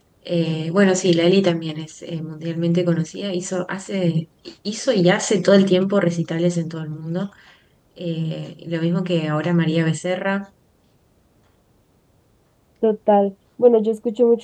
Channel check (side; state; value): both; identical; correlation 1.00